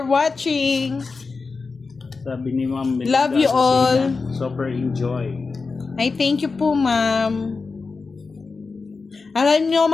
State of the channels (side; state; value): right; quieter; 4.3 dB